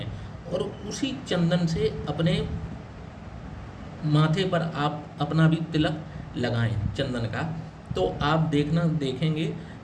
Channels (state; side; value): identical; both; correlation 1.00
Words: और उसी चंदन से अपने माथे पर आप अपना भी तिलक लगाएं चंदन का। तो आप देखेंगे